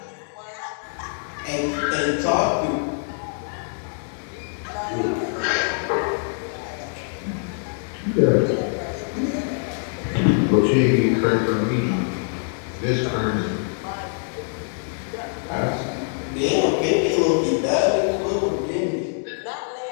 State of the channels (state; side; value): silent; right; 59 dB below the other